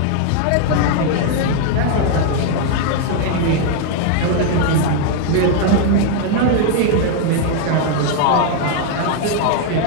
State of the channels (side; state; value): both; different; correlation 0.00